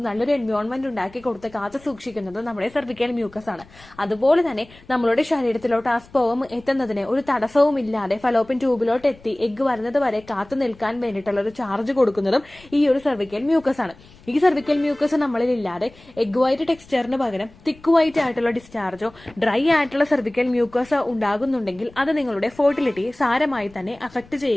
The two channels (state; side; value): noise; left; rumble, 24 dB below the sound